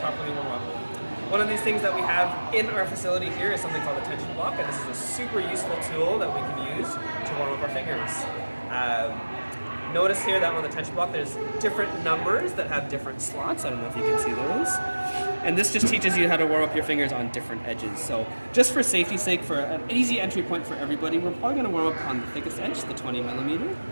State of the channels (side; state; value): both; inverted; correlation -1.00